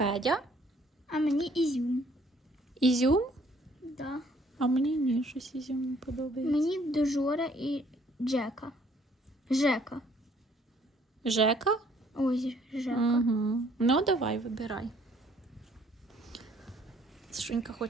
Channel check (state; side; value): normal; both; correlation 0.61